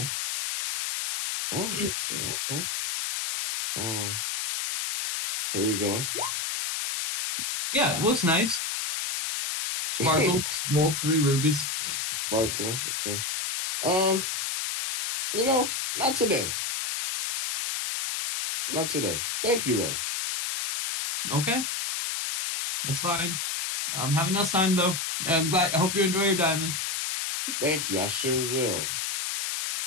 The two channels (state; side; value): noise; left; hiss, 2 dB below the sound